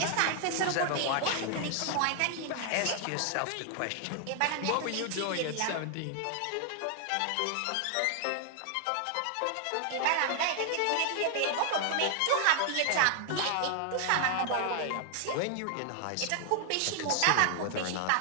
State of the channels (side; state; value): both; different; correlation 0.00